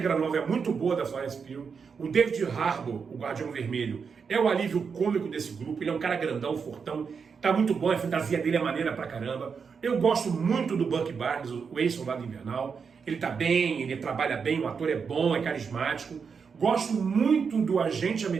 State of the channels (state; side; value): quieter; left; 5.9 dB